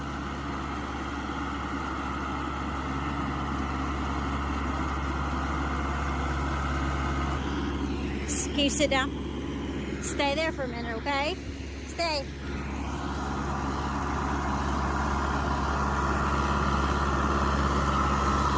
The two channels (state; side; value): identical; both; correlation 1.00